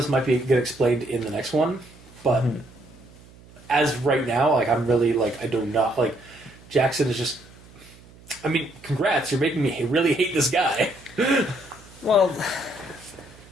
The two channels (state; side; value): noise; right; hum, 23 dB below the sound